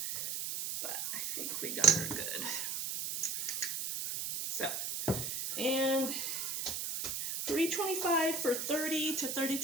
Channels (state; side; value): noise; right; hiss, 3 dB below the sound